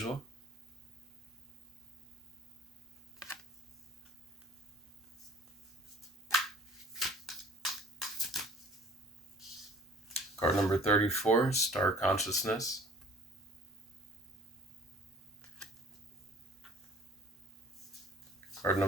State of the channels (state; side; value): normal; both; correlation 0.51